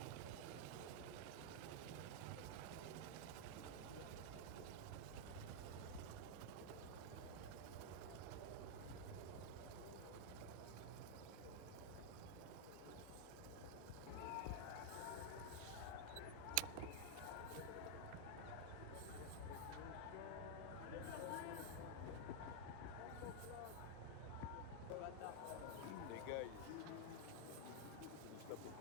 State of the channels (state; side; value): different; both; correlation 0.00